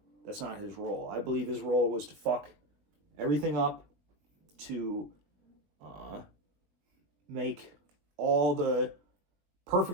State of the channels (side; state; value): left; late; 20 ms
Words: his role. I believe his role was to fuck everything up, to make all the